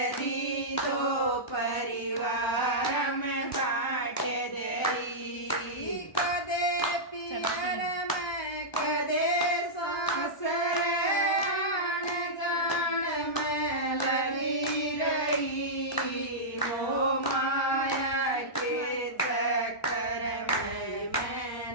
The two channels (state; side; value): late; right; 1.0 ms